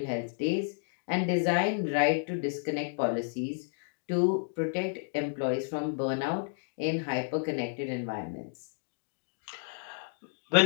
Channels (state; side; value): silent; right; digital silence